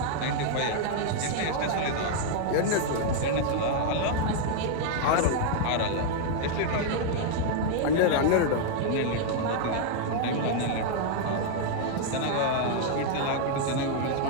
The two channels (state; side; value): different; both; correlation 0.00